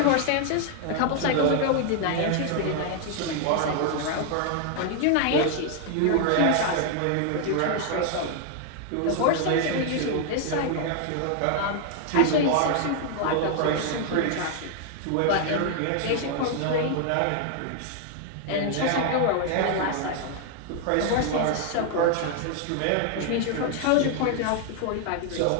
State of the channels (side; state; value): both; different; correlation 0.00